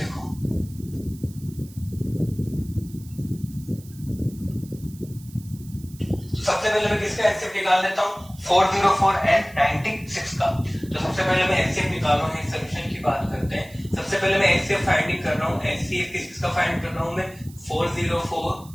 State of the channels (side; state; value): right; noise; hiss, 23 dB below the sound